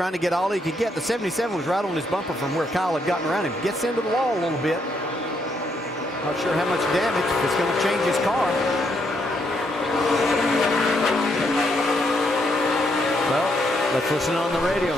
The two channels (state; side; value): normal; both; correlation 0.75